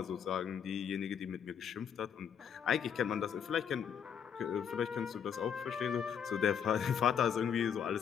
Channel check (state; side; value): quieter; right; 7.9 dB